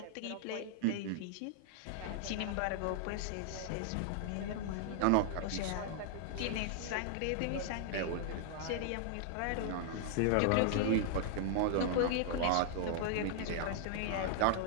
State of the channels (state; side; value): different; both; correlation -0.01